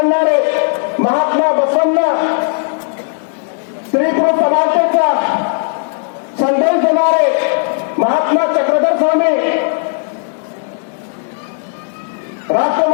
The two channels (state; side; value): silent; right; 70 dB below the other